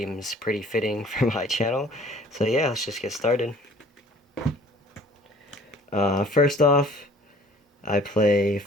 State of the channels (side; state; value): both; normal; correlation 0.53